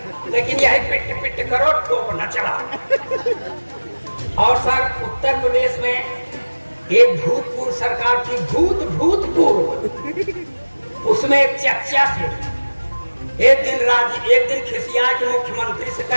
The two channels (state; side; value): inverted; both; correlation -1.00